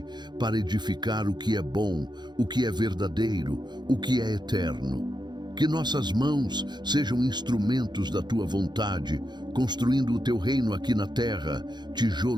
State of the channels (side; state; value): left; late; 0.21 ms